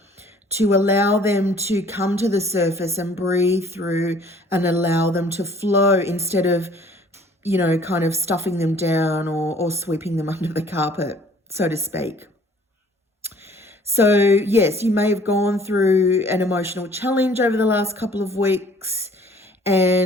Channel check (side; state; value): both; normal; correlation 0.55